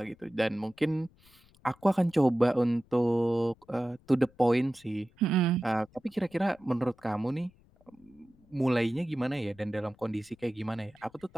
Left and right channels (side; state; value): left; noise; rumble, 29 dB below the sound